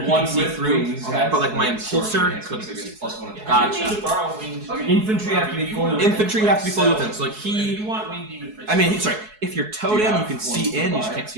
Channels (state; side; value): late; left; 4.7 ms